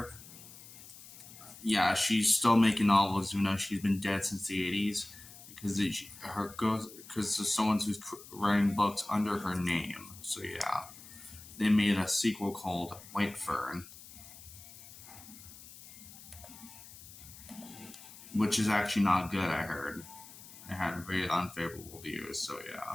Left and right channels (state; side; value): noise; left; hiss, 17 dB below the sound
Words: Yeah, she's still making novels even though she's been dead since the 80s, because there's someone who's writing books under her name. So yeah, they made a sequel called White Fern, which is actually not good, I heard. It had very unfavorable views, so